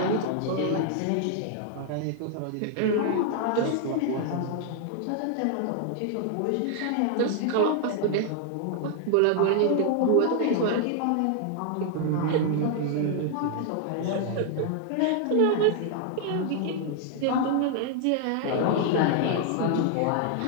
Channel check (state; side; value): different; both; correlation 0.00